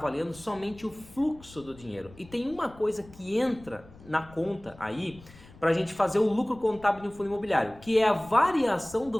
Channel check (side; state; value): left; noise; rumble, 21 dB below the sound